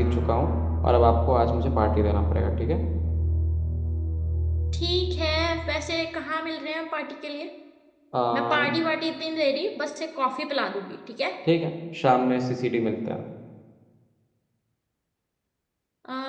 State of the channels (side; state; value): both; identical; correlation 1.00